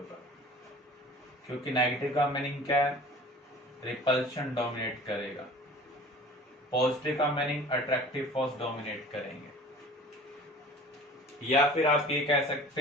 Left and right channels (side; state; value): both; normal; correlation 0.44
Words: क्योंकि नेगेटिव का मीनिंग क्या है? रिपल्शन डोमिनेट करेगा। पॉजिटिव का मीनिंग अट्रैक्टिव फोर्स डोमिनेट करेंगे। या फिर आप ये कह